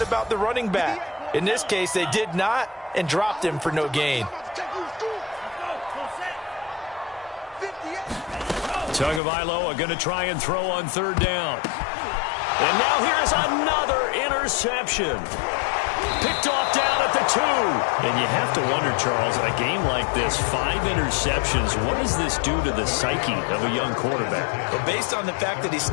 about the running back. In this case, they did not and dropped him for no gain. Tagovailoa going to try and throw on 3rd down. And now here's another interception. Picked off down at the 2. And you have to wonder, Charles, in a game like this, 5 interceptions, what does this do to the psyche of a young quarterback? Well, based on the fact that he's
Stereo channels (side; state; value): right; drops out; at 9.2 s